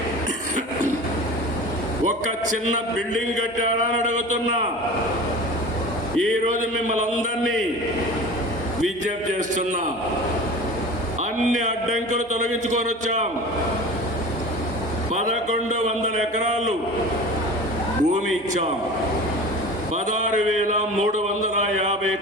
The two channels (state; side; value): normal; both; correlation 0.36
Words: ఒక చిన్న బిల్డింగ్ కట్టారా అని అడుగుతున్నా. ఈరోజు మిమ్మల్ని అందరినీ విజ్ఞప్తి చేస్తున్నా, అన్ని అడ్డంకులు తొలగించుకొని వచ్చాం. 1100 ఎకరాలు భూమి ఇచ్చాం. 16,350